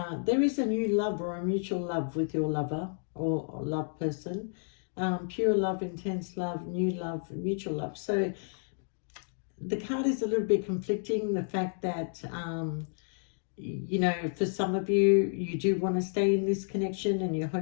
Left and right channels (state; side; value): silent; right; digital silence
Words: There is a new love or a mutual love with your lover or love person. Pure love, intense love, new love, mutual love. So the card is a little bit conflicting. The fact that, you know, for some of you, you do want to stay in this connection and you're